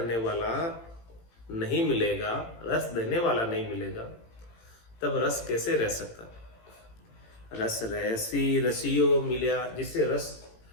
वाला नहीं मिलेगा, रस देने वाला नहीं मिलेगा, तब रस कैसे रह सकता? रस रहसी रसियो मिल्या, जिससे रस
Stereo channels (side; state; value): right; late; 18 ms